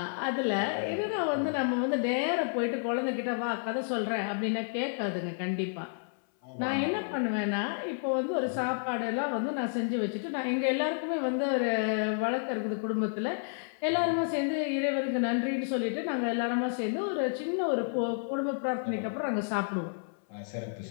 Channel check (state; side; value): silent; right; 57 dB below the other